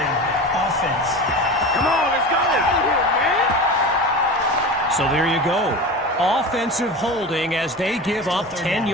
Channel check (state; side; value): normal; both; correlation 0.30